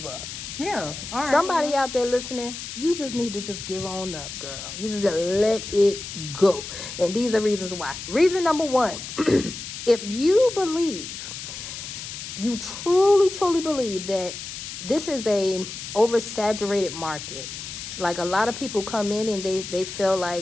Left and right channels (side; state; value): left; noise; hiss, 9 dB below the sound